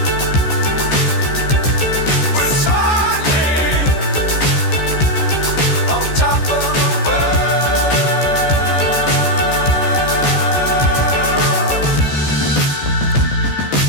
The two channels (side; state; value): right; late; 14 ms